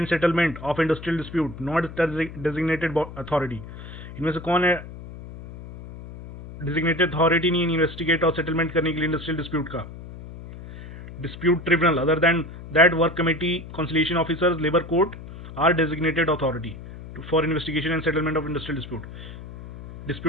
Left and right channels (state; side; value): noise; left; hum, 13 dB below the sound